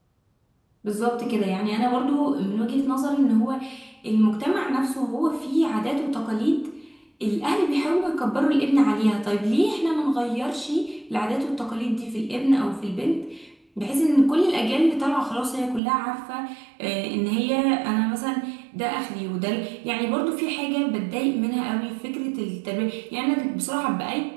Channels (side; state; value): left; drops out; at 15.8 s